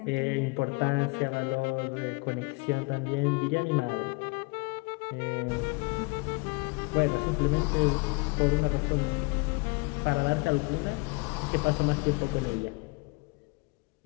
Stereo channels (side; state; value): right; quieter; 29.0 dB